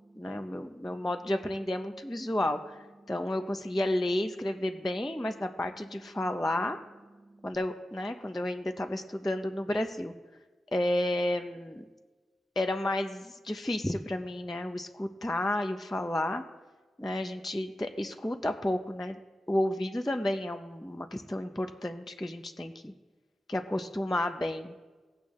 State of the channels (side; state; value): both; normal; correlation 0.92